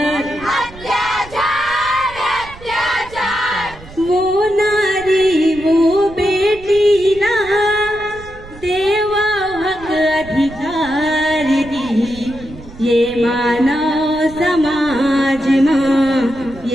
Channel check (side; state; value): right; noise; rumble, 18 dB below the sound